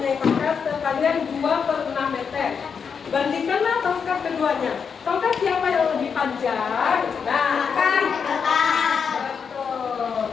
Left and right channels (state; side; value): quieter; right; 6.3 dB